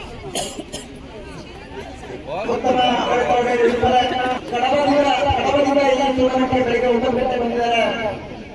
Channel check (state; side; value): identical; both; correlation 1.00